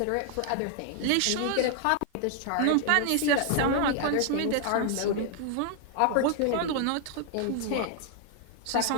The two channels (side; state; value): both; different; correlation 0.00